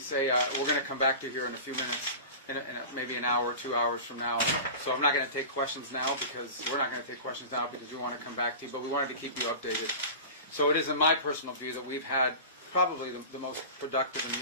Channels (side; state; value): both; inverted; correlation -0.33